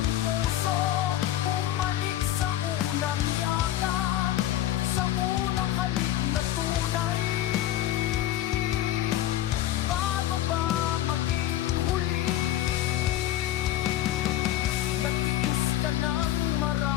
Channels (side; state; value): right; quieter; 13.4 dB